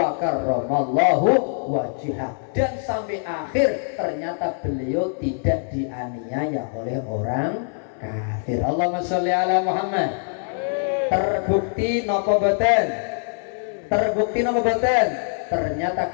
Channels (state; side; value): silent; right; 59 dB below the other